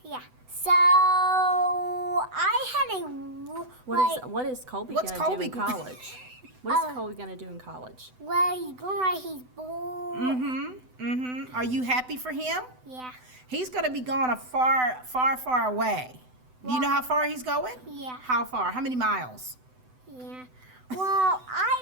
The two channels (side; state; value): left; late; 7.9 ms